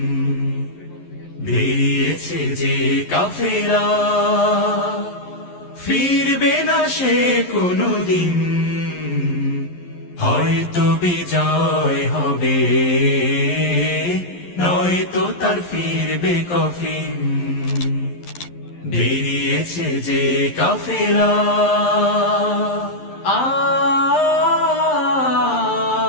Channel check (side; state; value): right; late; 11 ms